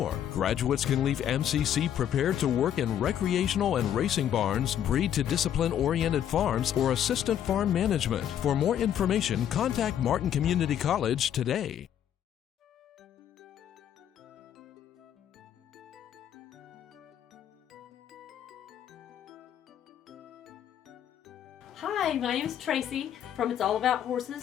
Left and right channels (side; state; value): right; quieter; 10.0 dB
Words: Graduates can leave MCC prepared to work in recreational and racing barns, breed to discipline-oriented farms, or assistant farm management. For more information, contact Martin Community College today. Hi, my name is Tracy from It's All About